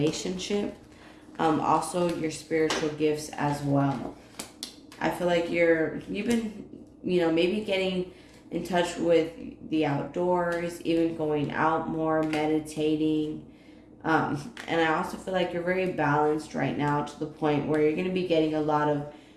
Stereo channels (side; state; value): both; identical; correlation 1.00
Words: Also your spiritual gifts as well. I feel like you've been, maybe getting in touch with the outdoors, even going out more, meditating. And I also feel like you're very balanced right now to the point where you're going to be getting a lot of